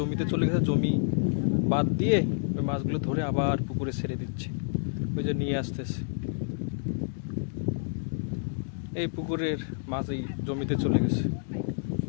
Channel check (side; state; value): right; silent; digital silence